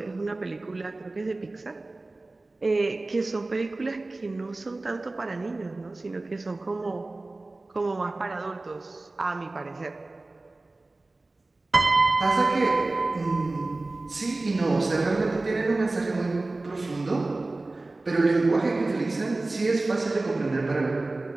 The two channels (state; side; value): quieter; left; 3.1 dB